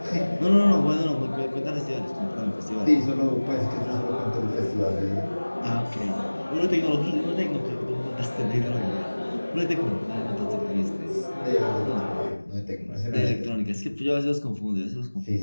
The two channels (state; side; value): inverted; both; correlation -1.00